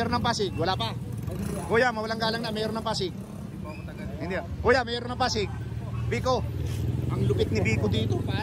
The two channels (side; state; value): both; identical; correlation 1.00